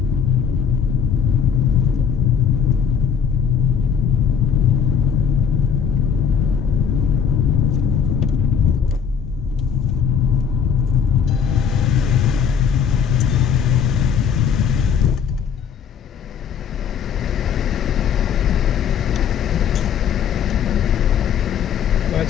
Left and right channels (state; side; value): quieter; right; 7.4 dB